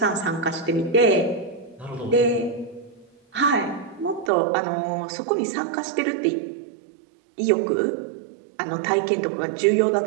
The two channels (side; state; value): left; drops out; at 4.3 s